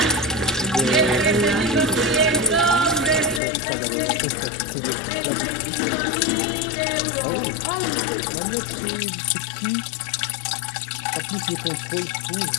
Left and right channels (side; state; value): right; drops out; at 3.4 s